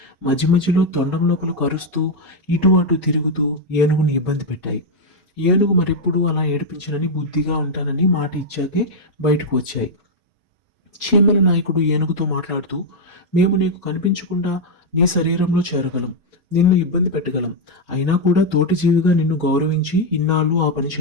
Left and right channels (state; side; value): normal; both; correlation -0.01